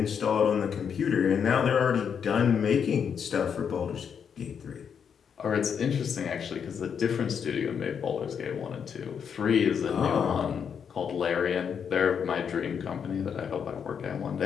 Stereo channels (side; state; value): right; quieter; 7.3 dB